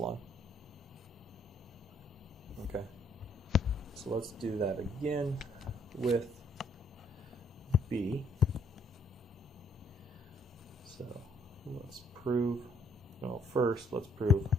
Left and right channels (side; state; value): both; normal; correlation 0.67